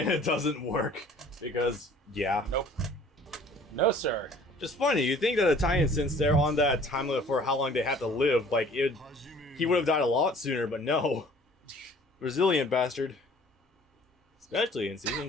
doesn't work. Because, yeah. Nope. No, sir. Just funny, you think that Italian, since they're on that time limit for how long they have to live, like, he would have died a lot sooner, but no. Resilient bastard. Especially in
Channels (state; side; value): normal; both; correlation 0.52